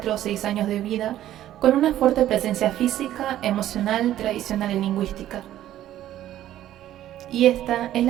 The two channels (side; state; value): left; quieter; 12.7 dB